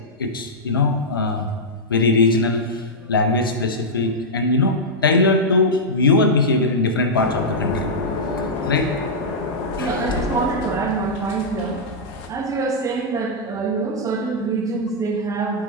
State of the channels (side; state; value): both; normal; correlation -0.08